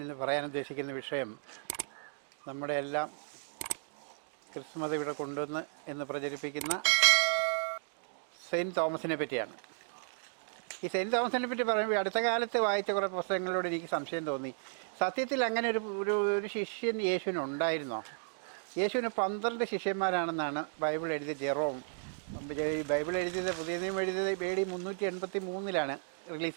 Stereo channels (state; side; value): silent; left; digital silence